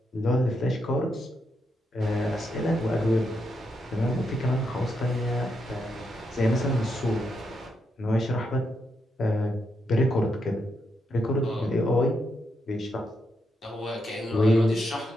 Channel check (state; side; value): normal; both; correlation 0.82